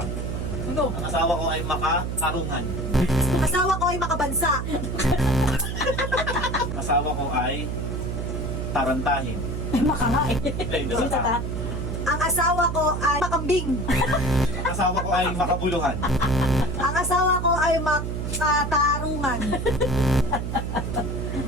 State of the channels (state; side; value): noise; right; hum, 3 dB below the sound